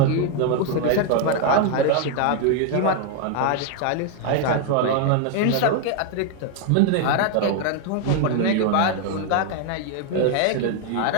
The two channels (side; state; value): both; different; correlation 0.01